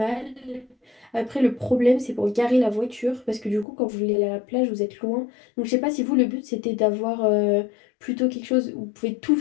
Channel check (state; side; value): drops out; right; at 3.7 s